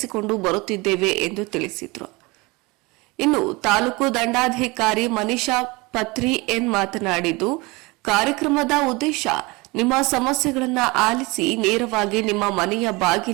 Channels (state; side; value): quieter; left; 24.6 dB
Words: ಬರುತ್ತಿದ್ದೇವೆ ಎಂದು ತಿಳಿಸಿದರು. ಇನ್ನು ತಾಲೂಕು ದಂಡಾಧಿಕಾರಿ ಮನೀಷಾ ಪತ್ರಿ ಎನ್ ಮಾತನಾಡಿದ್ದು, ಕಾರ್ಯಕ್ರಮದ ಉದ್ದೇಶ ನಿಮ್ಮ ಸಮಸ್ಯೆಗಳನ್ನು ಆಲಿಸಿ ನೇರವಾಗಿ ನಿಮ್ಮ ಮನೆಯ